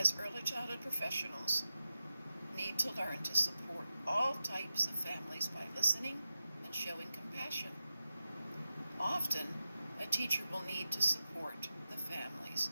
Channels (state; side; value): inverted; both; correlation -0.90